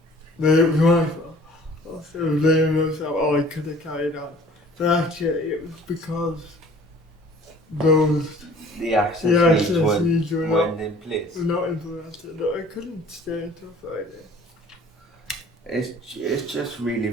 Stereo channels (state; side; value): normal; both; correlation 0.50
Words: Then it was my fault. Also, blaming myself, oh, I could have carried on. But actually, it was because The access needs were weren't in place. not implemented. I couldn't stay until Friday. It just really